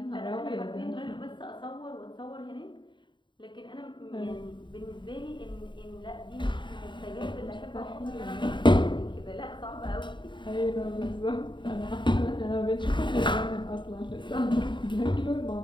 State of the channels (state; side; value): late; right; 0.23 ms